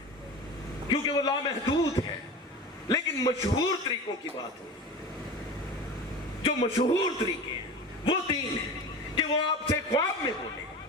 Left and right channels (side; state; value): both; normal; correlation 0.32